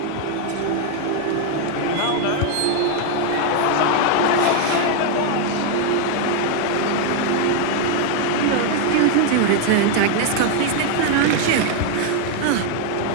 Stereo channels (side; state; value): both; different; correlation 0.01